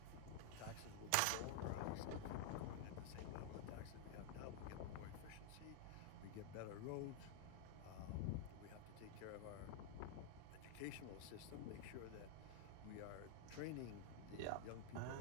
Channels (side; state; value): both; different; correlation 0.00